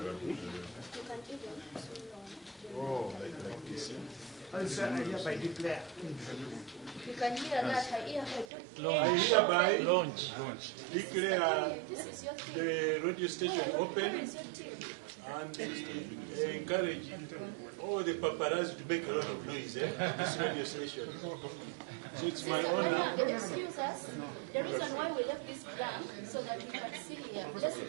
Oh, like this. I hereby declare. You can hear that. I hereby declare the radio station open and encourage all the paparazzi to make a lot of noise this radio station. So it's my honor. Excuse us. The reason why we left this blank so that we can see here. Let's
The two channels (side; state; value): left; drops out; at 8.5 s